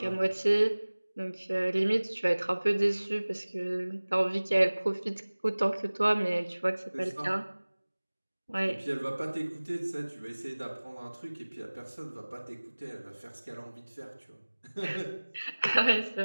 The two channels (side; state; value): both; inverted; correlation -1.00